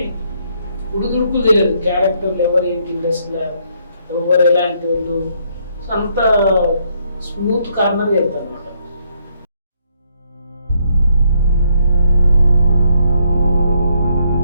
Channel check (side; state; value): both; inverted; correlation -0.72